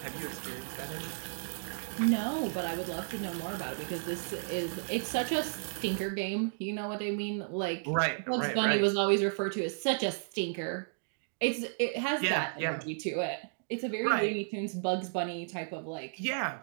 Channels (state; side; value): silent; left; digital silence